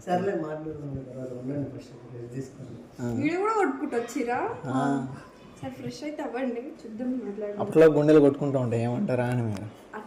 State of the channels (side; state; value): both; identical; correlation 1.00